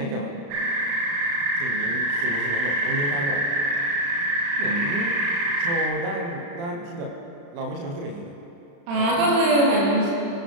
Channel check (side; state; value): left; late; 35 ms